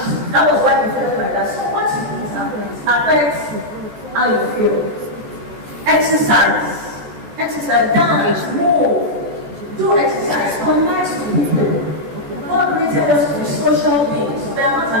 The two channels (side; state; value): left; late; 14 ms